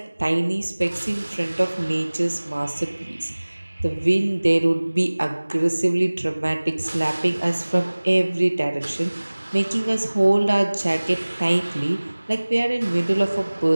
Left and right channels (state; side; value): inverted; both; correlation -1.00